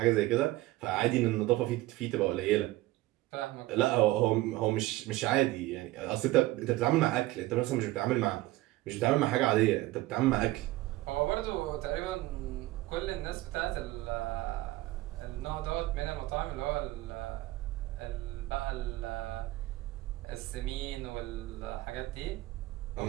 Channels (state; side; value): quieter; left; 18.0 dB